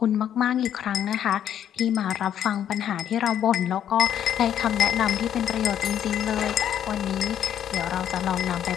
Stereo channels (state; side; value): quieter; right; 10.0 dB